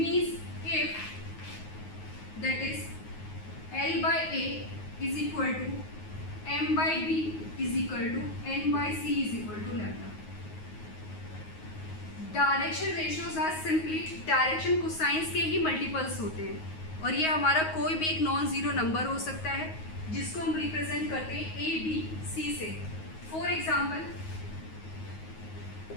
if that is L by A is equal to M by B is equal to N by C is equal to lambda. Direction ratios are simply direction cosines के ही मल्टीपल्स होते हैं, और ये हमारा कोई भी एक नॉन ज़ीरो नंबर हो सकता है जिसको हम रिप्रेजेंट करते हैं ए बी सी से. For example,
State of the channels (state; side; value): late; right; 9.4 ms